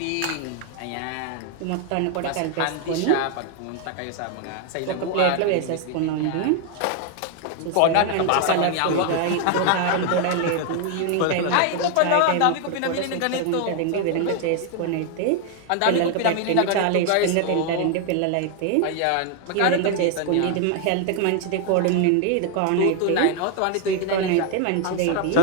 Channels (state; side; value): different; both; correlation 0.00